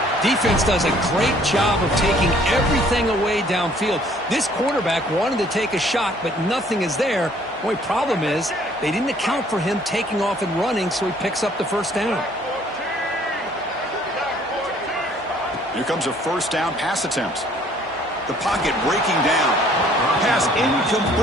Defense does a great job of taking everything away downfield. This quarterback wanted to take a shot, but nothing is there. The only problem is they didn't account for him taking off and running, so he picks up the 1st down. Here comes a 1st down pass attempt. The pocket breaking down. Pass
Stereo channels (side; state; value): both; normal; correlation 0.59